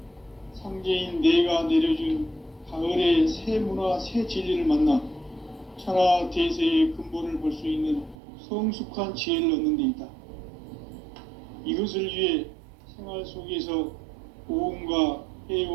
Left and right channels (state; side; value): drops out; left; at 8.2 s